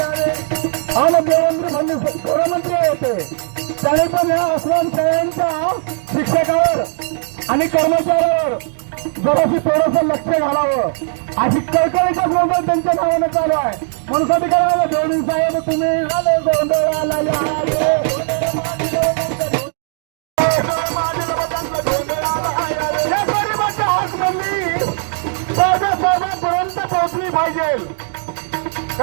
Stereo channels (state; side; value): silent; left; 68 dB below the other